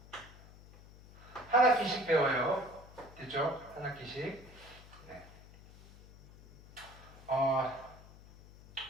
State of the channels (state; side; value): noise; left; hum, 20 dB below the sound